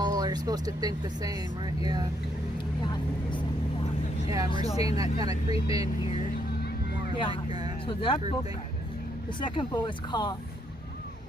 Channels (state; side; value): normal; both; correlation 0.74